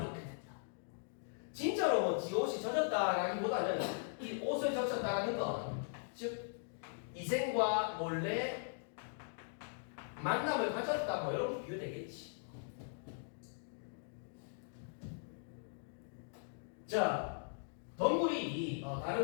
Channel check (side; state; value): right; silent; digital silence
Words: 된다. 진짜로 뭐 지 옷이 젖었다라기보다는 이 옷을 적셨다는 건 즉 이생과 몰래 만남을 가졌다 뭐 이런 비유되겠지. 자, 덩굴이